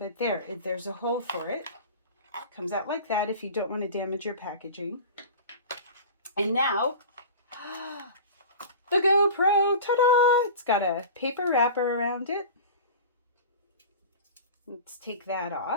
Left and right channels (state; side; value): inverted; both; correlation -0.34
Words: there's a hole for it. Comes out like that if you don't want to damage your packaging. And now, the GoPro, ta-da! It's got a paper wrapper around it. Let's take that